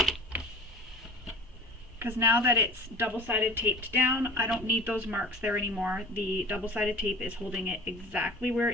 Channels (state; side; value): normal; both; correlation 0.40